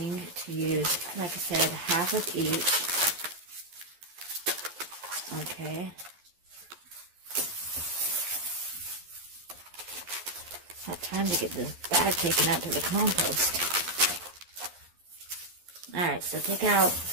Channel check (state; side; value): late; left; 11 ms